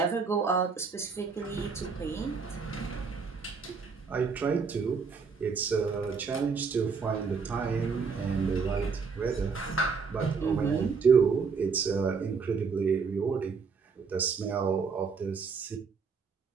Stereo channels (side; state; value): left; quieter; 5.3 dB